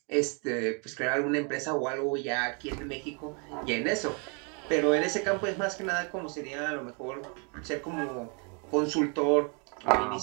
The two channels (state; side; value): quieter; left; 35.8 dB